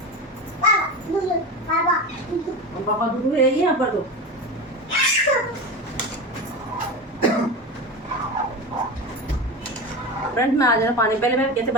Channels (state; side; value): normal; both; correlation 0.24